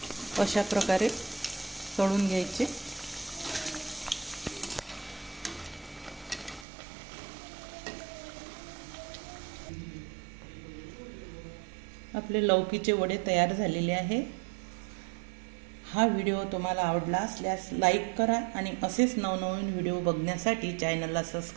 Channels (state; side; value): drops out; left; at 6.7 s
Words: अशा प्रकारे तळून घ्यायचे. आपले लौकीचे वडे तयार झालेले आहे. हा व्हिडिओ तुम्हाला आवडला असल्यास लाईक करा आणि असेच नवनवीन व्हिडिओ बघण्यासाठी चॅनलला